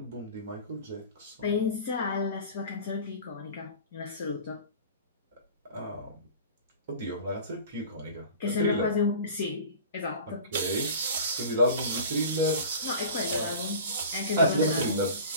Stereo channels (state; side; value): inverted; both; correlation -0.38